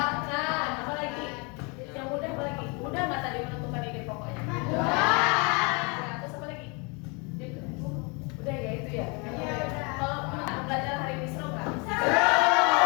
Apa lagi? Yang mudah apa lagi? Mudah nggak tadi menentukan ide pokoknya? Ya, terus apa lagi? Udah ya itu ya. Kalau belajar hari ini seru nggak? Ada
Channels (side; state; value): right; quieter; 31.6 dB